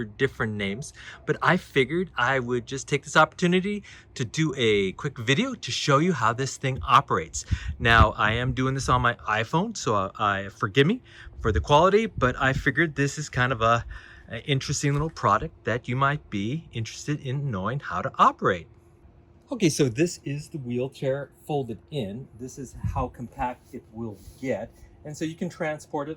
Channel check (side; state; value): both; identical; correlation 1.00